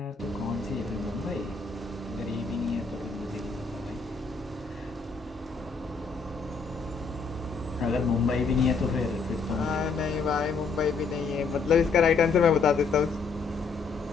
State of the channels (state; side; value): quieter; right; 4.8 dB